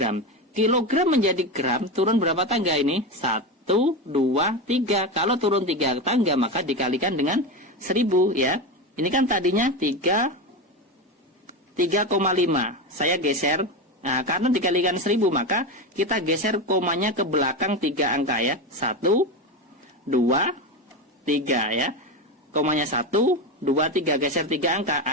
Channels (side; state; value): both; normal; correlation 0.18